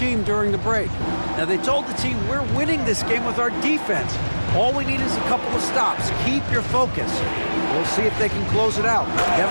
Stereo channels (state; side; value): inverted; both; correlation -1.00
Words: during the break. Now, they told the team, we're winning this game with our defense. All we need is a couple of stops. Keep your focus. We'll see if they can close it out.